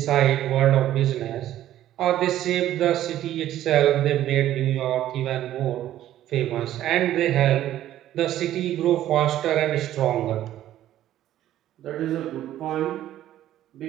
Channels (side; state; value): left; quieter; 12.7 dB